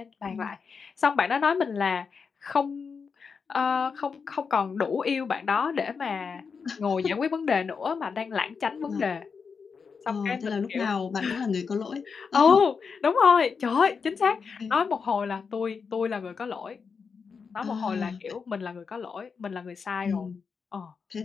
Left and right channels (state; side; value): quieter; right; 5.6 dB